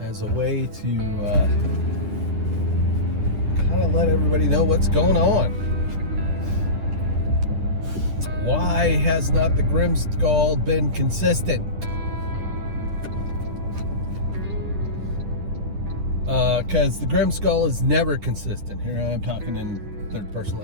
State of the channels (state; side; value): late; left; 10 ms